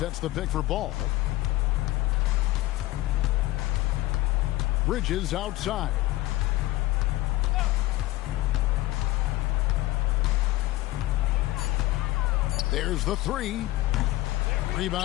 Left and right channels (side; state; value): right; quieter; 17.6 dB